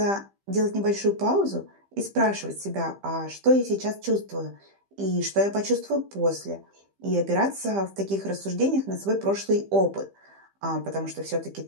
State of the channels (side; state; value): left; late; 15 ms